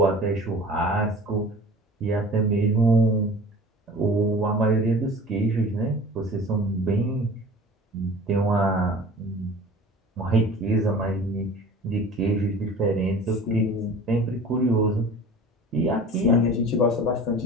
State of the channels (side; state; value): both; normal; correlation 0.42